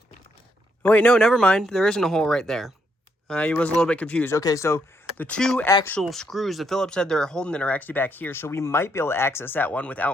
Oh, wait, no, never mind. There isn't a hole right there. I was a little bit confused. Okay, so The two actual screws, the Phillips head they're holding it, are actually back here, so we might be able to access that one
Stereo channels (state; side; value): normal; both; correlation 0.75